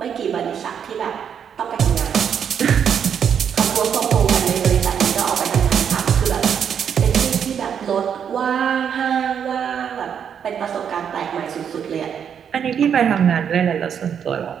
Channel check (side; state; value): left; quieter; 7.9 dB